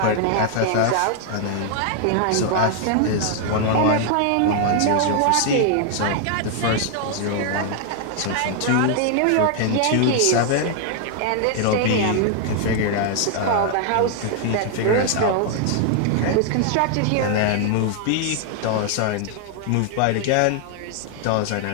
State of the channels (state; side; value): different; both; correlation 0.00